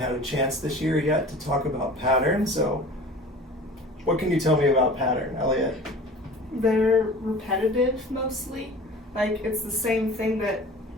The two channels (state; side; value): normal; both; correlation 0.41